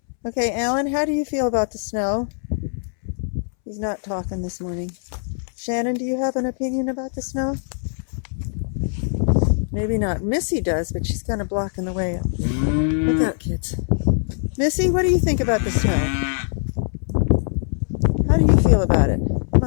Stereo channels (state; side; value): silent; right; 64 dB below the other